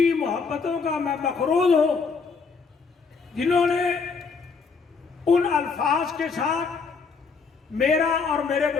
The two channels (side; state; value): right; quieter; 5.0 dB